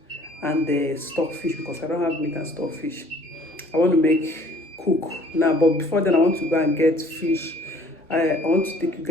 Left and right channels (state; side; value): normal; both; correlation 0.55